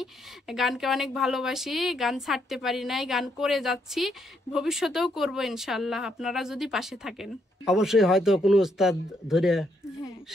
গানকে অনেক ভালোবাসি, গান ছাড়তে পারি নাই, গান করে যাচ্ছি, ভবিষ্যতেও করব ইনশাল্লাহ, আপনারা যদি পাশে থাকেন। অবশ্যই হয়তো কোনো ওস্তাদ ধরে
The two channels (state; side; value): normal; both; correlation 0.75